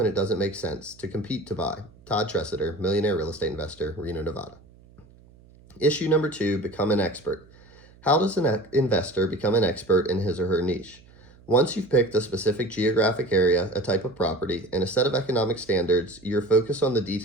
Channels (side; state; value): right; noise; hum, 26 dB below the sound